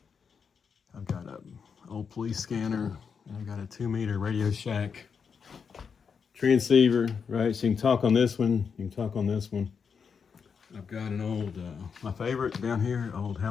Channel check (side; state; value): right; quieter; 6.2 dB